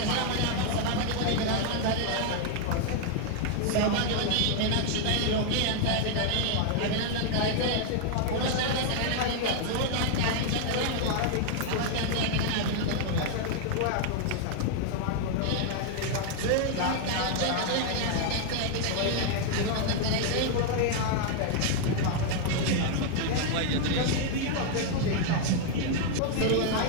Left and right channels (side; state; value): both; different; correlation 0.00